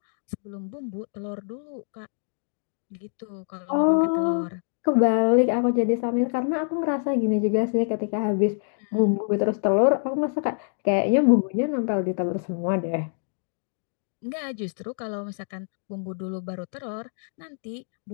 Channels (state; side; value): silent; right; digital silence